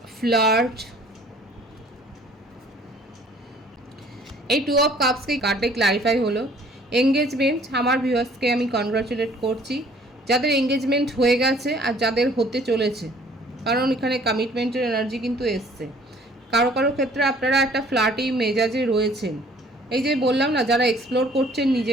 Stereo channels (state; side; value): normal; both; correlation 0.56